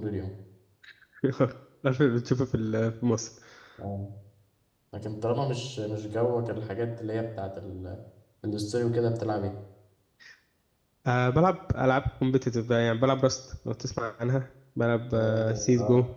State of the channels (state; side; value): identical; both; correlation 1.00